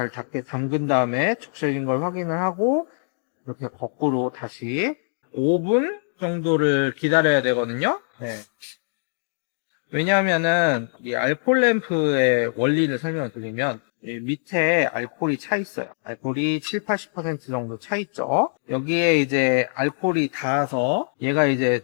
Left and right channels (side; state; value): right; silent; digital silence